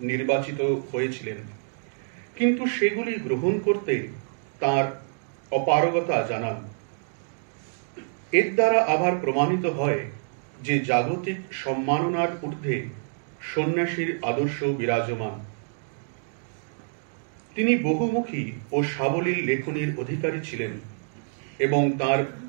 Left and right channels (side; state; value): left; silent; digital silence